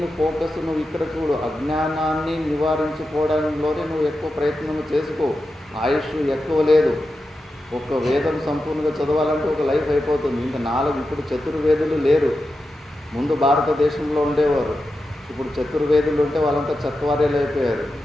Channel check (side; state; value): both; normal; correlation 0.90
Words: ఫోకస్ నువ్వు ఇక్కడ చూడు. అజ్ఞానాన్ని నివారించుకోవడంలోనే నువ్వు ఎక్కువ ప్రయత్నం చేసుకో. ఆయుష్ ఎక్కువ లేదు. ఒక వేదం సంపూర్ణంగా చదవాలంటే ఒక లైఫ్ అయిపోతుంది. ఇంకా 4 ఇప్పుడు చతుర్వేదులు లేరు. ముందు భారతదేశంలో ఉండేవారు. ఇప్పుడు చతుర్వేదులు ఉంటే వాళ్ళంతా చత్వార్యాలు అయిపోయారు.